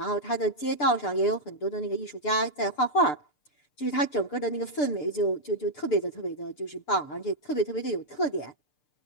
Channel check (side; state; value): right; late; 6.8 ms